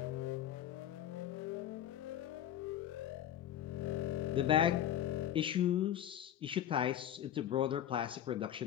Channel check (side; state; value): right; quieter; 11.2 dB